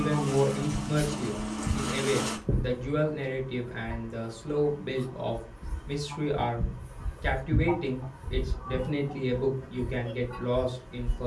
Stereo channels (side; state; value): both; identical; correlation 1.00